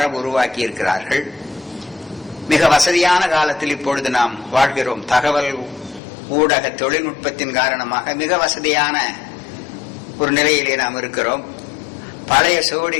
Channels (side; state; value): right; drops out; at 6.0 s